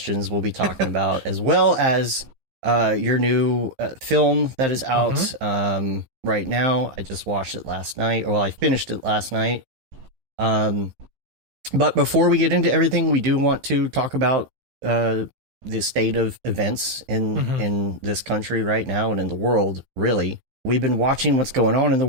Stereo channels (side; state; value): left; late; 15 ms